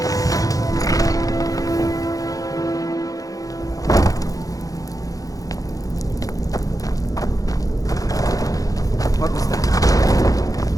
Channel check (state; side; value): late; right; 0.17 ms